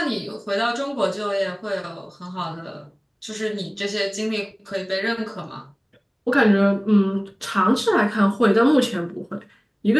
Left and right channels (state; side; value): identical; both; correlation 1.00